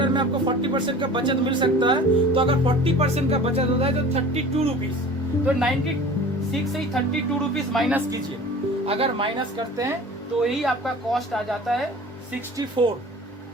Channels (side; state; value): both; normal; correlation 0.41